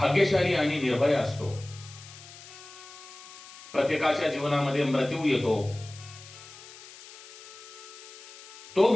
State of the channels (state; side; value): noise; left; hiss, 17 dB below the sound